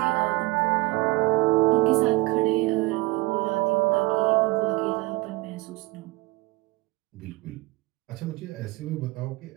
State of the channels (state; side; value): quieter; left; 21.9 dB